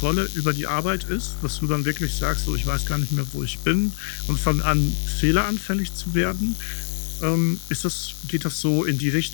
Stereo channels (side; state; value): right; silent; digital silence